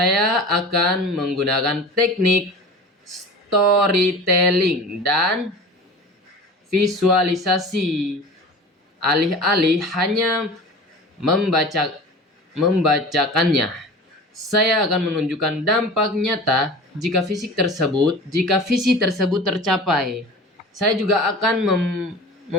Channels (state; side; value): normal; both; correlation 0.36